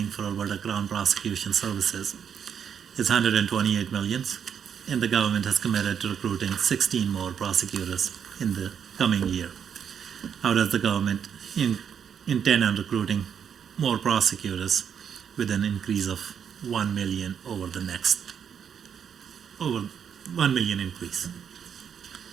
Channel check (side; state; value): left; quieter; 7.8 dB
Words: for Alberta Crown Prosecution Services is 128 million, and the government has committed to recruiting 16 more prosecutors in the coming year. How does the government intend on recruiting more prosecutors with an increase of 1 million over 1 million increase?